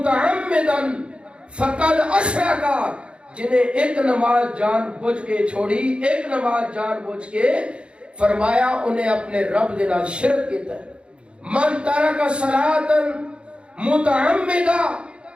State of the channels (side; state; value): left; late; 0.057 ms